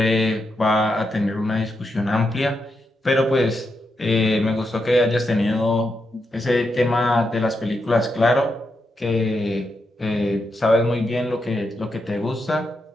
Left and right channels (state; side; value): normal; both; correlation 0.84